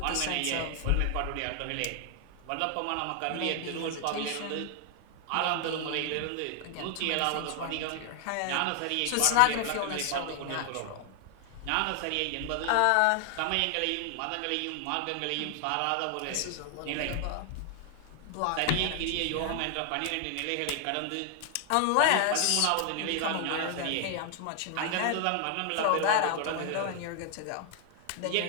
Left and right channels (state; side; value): different; both; correlation 0.00